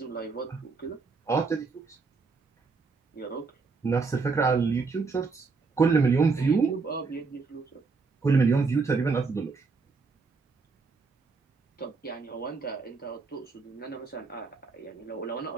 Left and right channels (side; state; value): left; quieter; 4.5 dB